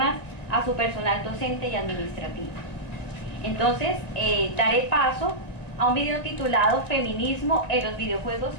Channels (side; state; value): right; late; 1.9 ms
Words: a su personal docente y administrativo. Entonces, daré paso a un video titulado Feminismo en los videojuegos,